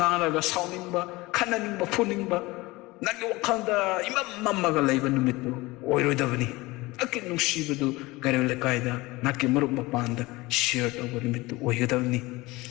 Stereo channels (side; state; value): right; quieter; 21.5 dB